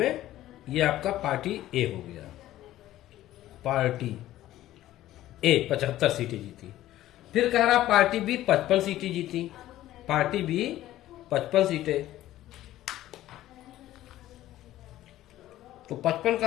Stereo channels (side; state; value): right; quieter; 14.3 dB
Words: ये आपका पार्टी ए हो गया। पार्टी ए 75 सीटें जीती। फिर कह रहा पार्टी बी 55 सीटें जीती, पार्टी बी 55 सीटें। तो 55